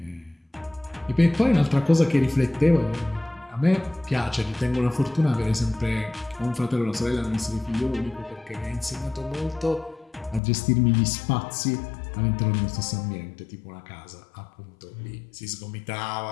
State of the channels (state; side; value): drops out; right; at 10.4 s